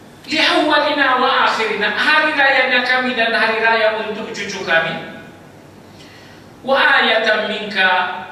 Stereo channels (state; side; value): identical; both; correlation 1.00